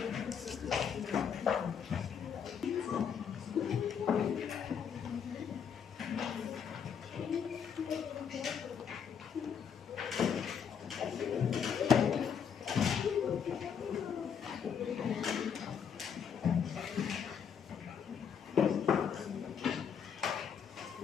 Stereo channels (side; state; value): right; quieter; 7.4 dB